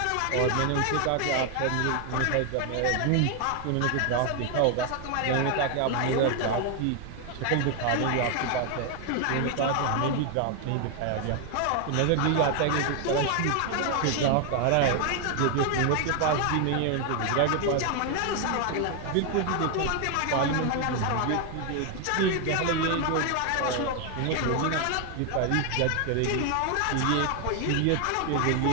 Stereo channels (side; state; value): both; different; correlation 0.01